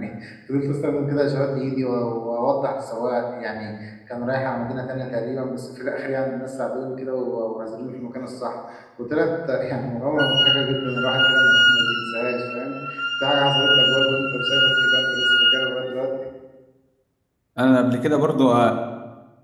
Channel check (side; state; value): both; identical; correlation 1.00